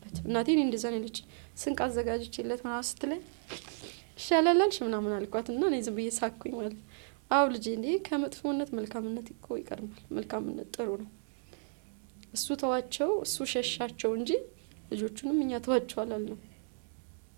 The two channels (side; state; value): left; silent; digital silence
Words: እናቴን እንደዛ ነው ልጅ ስንቅ አዘጋጅቼለት ምናምን ስትለኝ ይሻላልሽ ምናምን አልኳትና እኔ ዝም ብዬ ሳኩኝ ማለት አው ልጄ እንዴ ከመጥፎነት መልካምነት እኮ ይቀርማል። መልካምነት ጥሩ ነው። እሱ ተዋቸው እሱ ሸሻቸው እንጂ ልጆቹንም እኛ ተዋቸው አላልነው።